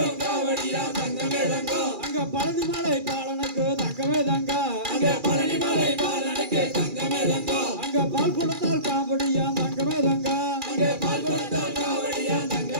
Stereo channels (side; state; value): left; late; 2.4 ms